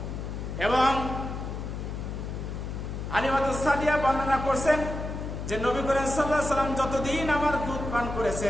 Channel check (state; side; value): noise; left; hum, 6 dB below the sound